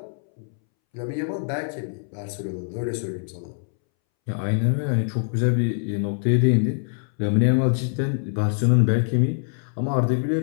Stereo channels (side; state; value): right; silent; 63 dB below the other